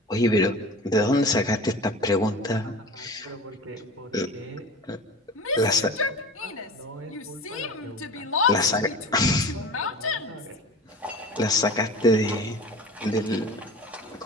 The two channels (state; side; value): normal; both; correlation 0.36